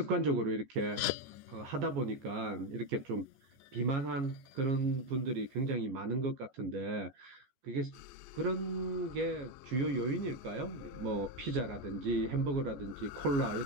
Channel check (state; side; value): late; left; 14 ms